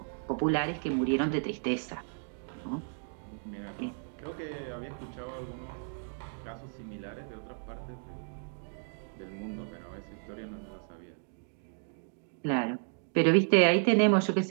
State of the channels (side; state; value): left; silent; 56 dB below the other